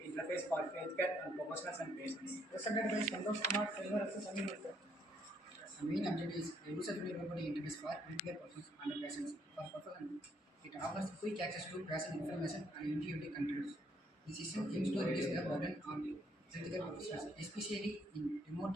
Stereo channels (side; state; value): both; normal; correlation 0.70